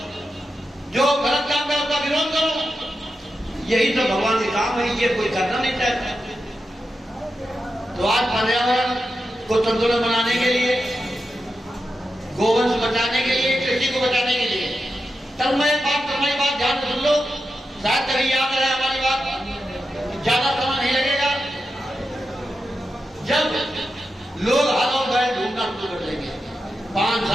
जो गलत काम है उसका विरोध करो। यही तो भगवान के काम है, ये कोई करना नहीं चाहता। तो आज पर्यावरण को संतुलन बनाने के लिए, गोवंश बचाने के लिए, कृषि को बचाने के लिए, तन्मय बात ध्यान सुन लो, शायद कभी याद रहे हमारी बात। ज्यादा समय नहीं लगेगा, जब लोग हल और बैल ढूंढना शुरू कर देंगे 5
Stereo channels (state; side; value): normal; both; correlation 0.89